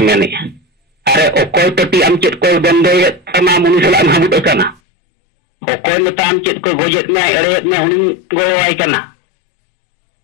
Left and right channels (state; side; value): drops out; right; at 4.8 s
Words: मेने अरे ओकोय पट्टी आम चेत को बंदो ये तमा मुनिसला हम हाबुट कना ओकोय में ताम चेत को गोजेत में अरेत में हुनी गोवाय कना